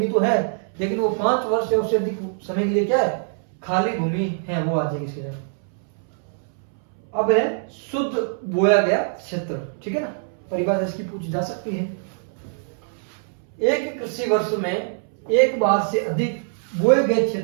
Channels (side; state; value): left; silent; 63 dB below the other